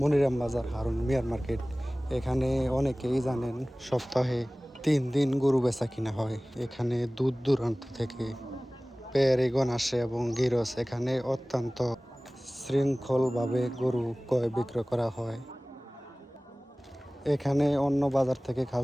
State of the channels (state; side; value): normal; both; correlation 0.98